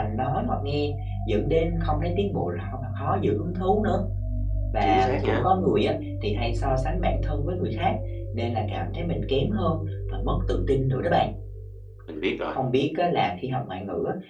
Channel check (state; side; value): identical; both; correlation 1.00